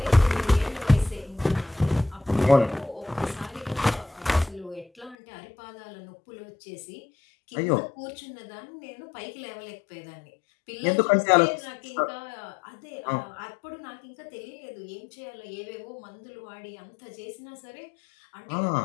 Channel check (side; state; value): right; drops out; at 5.2 s